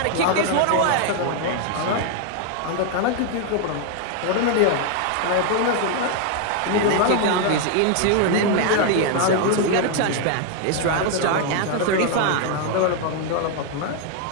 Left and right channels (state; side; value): different; both; correlation 0.00